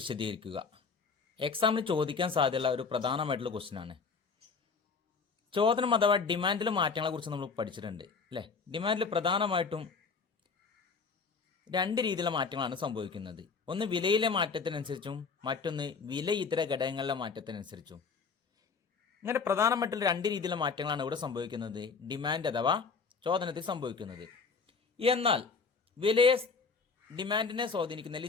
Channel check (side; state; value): right; quieter; 5.1 dB